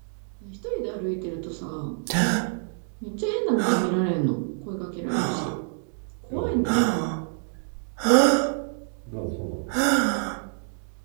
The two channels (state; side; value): silent; left; 60 dB below the other